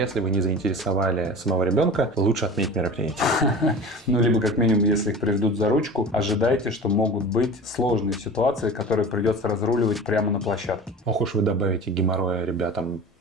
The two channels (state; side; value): normal; both; correlation 0.36